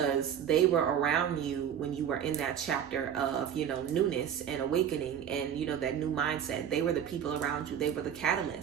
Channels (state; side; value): quieter; left; 9.0 dB